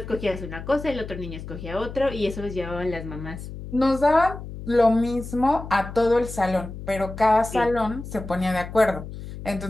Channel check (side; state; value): left; noise; hum, 11 dB below the sound